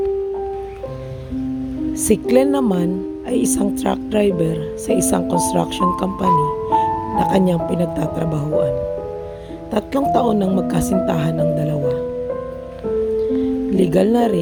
Si Glenn naman ay isang truck driver sa isang construction company na kanyang pinagtatrabahuan. 3 taon nang magkasintahan ng dalawa. Legal na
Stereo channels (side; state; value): both; identical; correlation 1.00